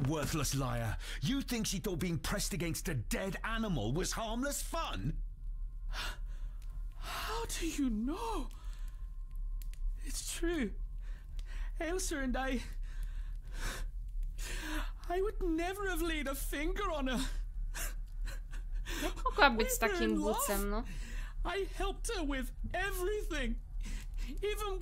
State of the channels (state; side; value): identical; both; correlation 1.00